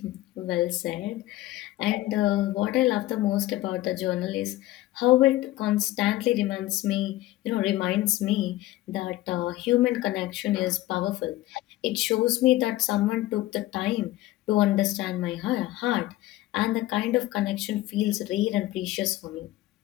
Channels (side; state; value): right; quieter; 16.3 dB